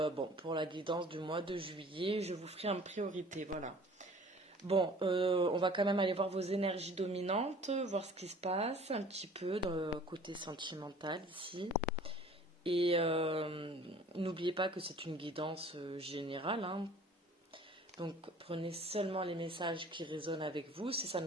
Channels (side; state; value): both; normal; correlation 0.49